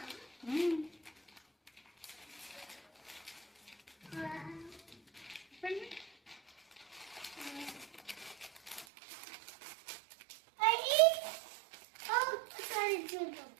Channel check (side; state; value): left; drops out; at 8.8 s